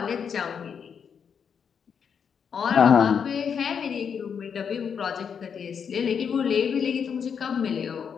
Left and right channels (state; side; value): quieter; right; 7.0 dB